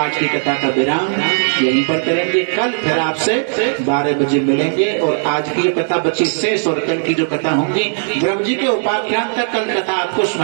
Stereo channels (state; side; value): silent; left; digital silence